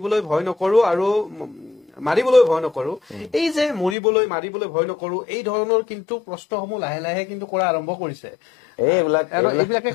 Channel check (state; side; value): drops out; right; at 4.0 s